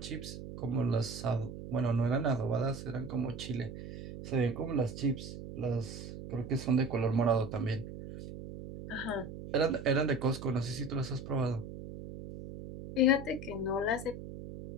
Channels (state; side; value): noise; right; hum, 10 dB below the sound